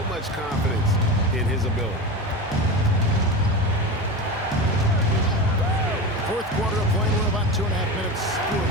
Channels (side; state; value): both; normal; correlation 0.25